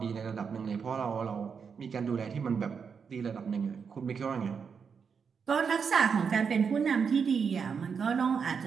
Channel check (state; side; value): quieter; left; 6.2 dB